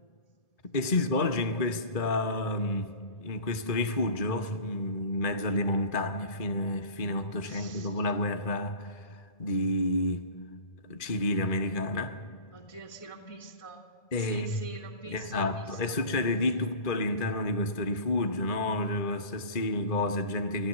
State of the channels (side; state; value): right; late; 1.7 ms